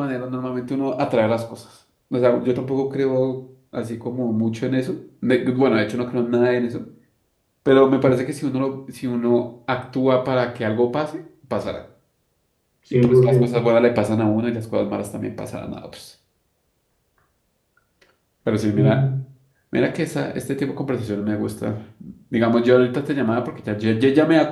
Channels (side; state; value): both; identical; correlation 1.00